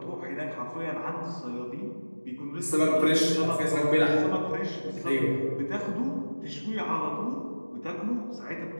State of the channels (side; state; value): both; inverted; correlation -1.00